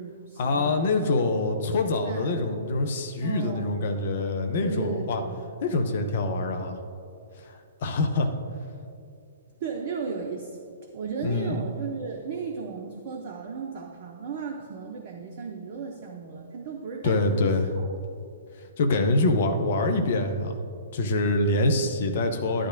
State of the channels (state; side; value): inverted; both; correlation -0.47